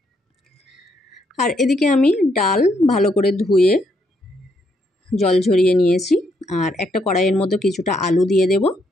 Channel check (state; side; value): normal; both; correlation 0.75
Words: আর এদিকে আমি ডাল ভালো করে ধুয়ে জল ঝরিয়ে নিয়েছি, আর একটা কড়াইয়ের মধ্যে কিছুটা আলু দিয়ে দেব।